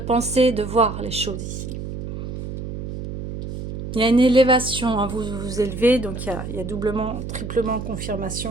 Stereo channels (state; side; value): noise; right; hum, 7 dB below the sound